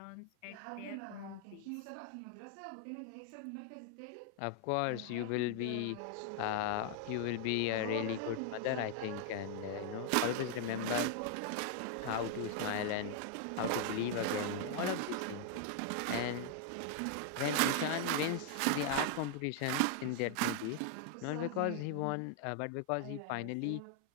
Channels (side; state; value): both; different; correlation 0.00